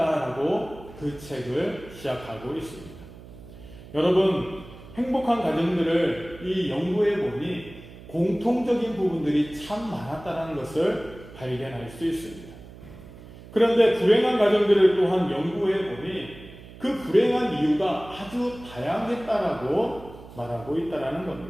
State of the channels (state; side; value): noise; right; hum, 18 dB below the sound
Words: 그 책을 시작하고 있습니다. 여러분, 행복한 가정들을 이 연구해 보니 공통적인 부분들이 참 많았다는 것을 발견할 수 있습니다. 그런데 불행한 가정들을 또한 연구해 보니 그 불행한 이유가 아주 다양했다라고 말하고 있다는